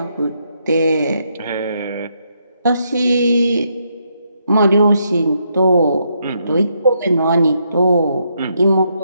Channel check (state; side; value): inverted; both; correlation -0.77